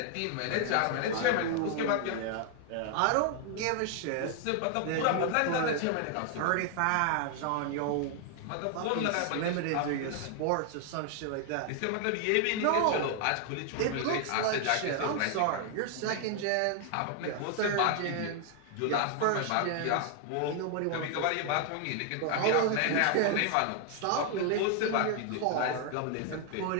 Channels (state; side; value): different; both; correlation 0.00